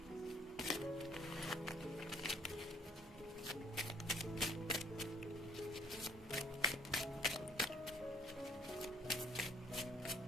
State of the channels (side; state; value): both; normal; correlation 0.59